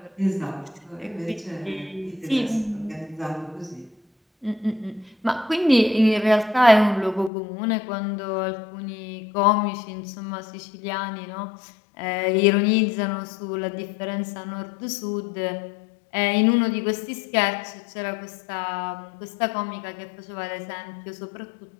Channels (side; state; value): right; drops out; at 7.3 s